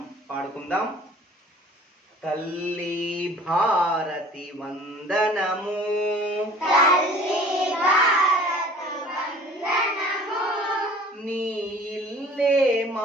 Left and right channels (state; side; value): normal; both; correlation 0.48